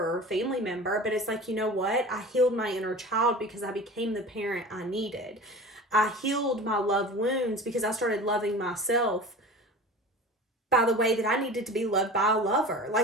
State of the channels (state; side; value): normal; both; correlation 0.36